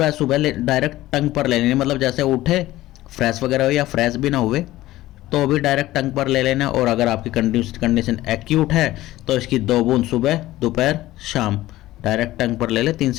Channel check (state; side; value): quieter; right; 16.2 dB